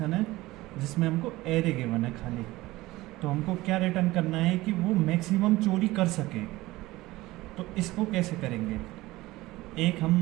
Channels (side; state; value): left; quieter; 18.7 dB